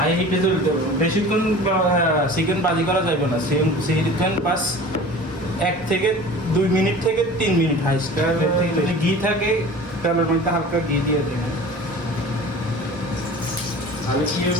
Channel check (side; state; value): both; normal; correlation 0.40